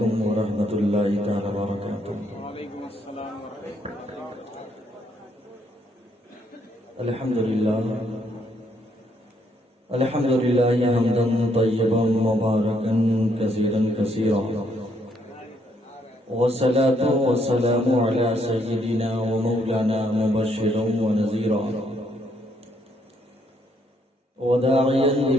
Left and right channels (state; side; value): normal; both; correlation 0.72